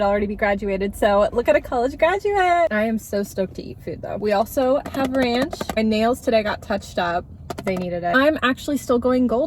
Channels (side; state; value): both; identical; correlation 1.00